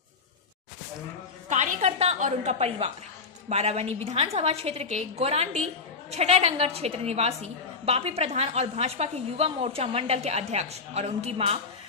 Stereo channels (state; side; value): quieter; right; 4.6 dB